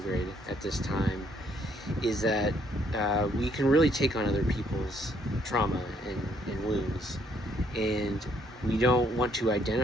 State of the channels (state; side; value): normal; both; correlation 0.68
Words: at this time, is that we can really take on other people's trauma and wounds, and we don't want to